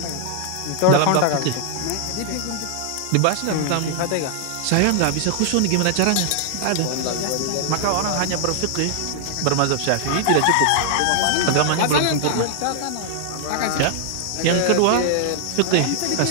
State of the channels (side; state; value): both; different; correlation 0.00